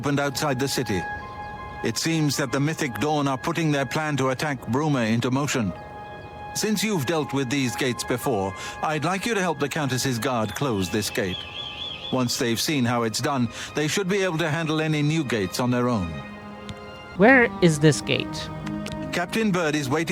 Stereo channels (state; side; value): identical; both; correlation 1.00